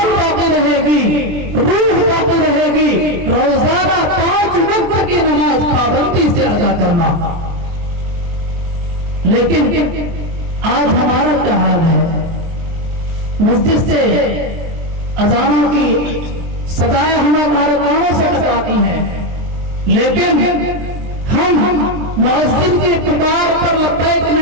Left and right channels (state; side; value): late; left; 23 ms